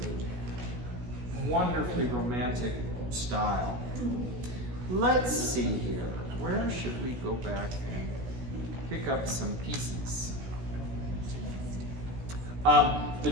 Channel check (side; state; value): left; late; 16 ms